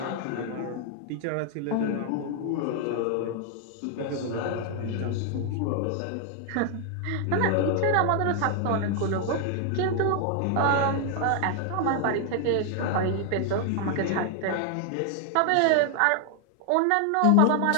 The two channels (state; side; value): different; both; correlation 0.00